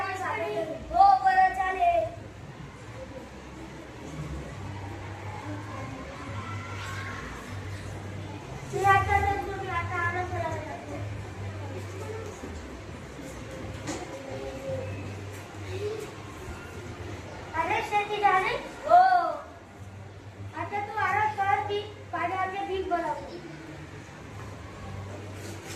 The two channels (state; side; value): identical; both; correlation 1.00